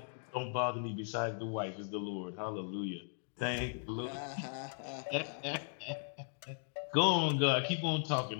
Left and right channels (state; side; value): silent; right; digital silence